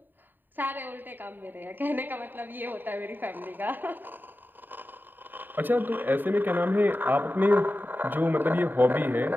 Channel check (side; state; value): left; late; 0.091 ms